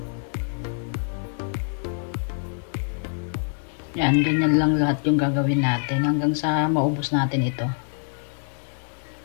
Yan, ganyan lang lahat yung gagawin natin hanggang sa maubos natin ito.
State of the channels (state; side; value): silent; right; digital silence